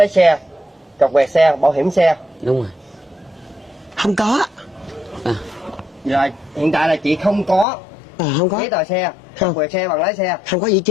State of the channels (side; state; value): right; drops out; at 7.7 s